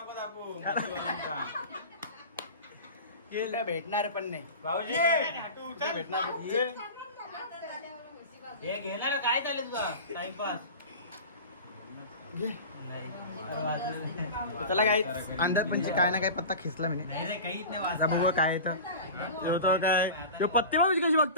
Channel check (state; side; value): inverted; both; correlation -0.33